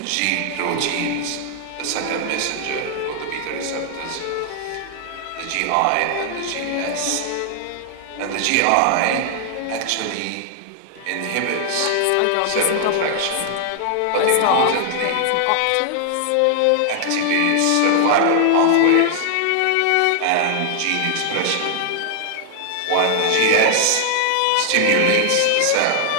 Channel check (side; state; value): both; different; correlation 0.00